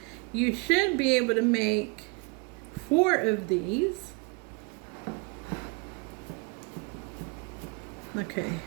you should be able to make 4 of these. Okay,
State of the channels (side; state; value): left; quieter; 30.5 dB